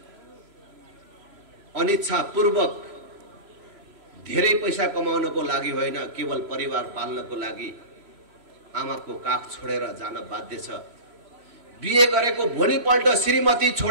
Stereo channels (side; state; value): left; late; 3.0 ms